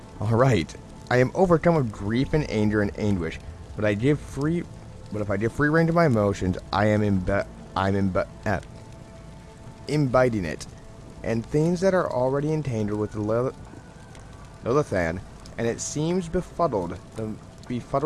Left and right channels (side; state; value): both; identical; correlation 1.00